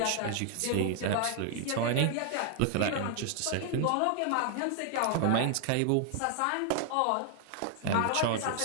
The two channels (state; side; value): different; both; correlation 0.00